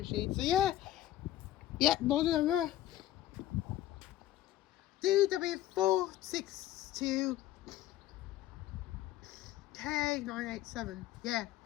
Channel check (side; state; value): right; quieter; 13.6 dB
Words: So yeah, model number DW462 K987. Yeah.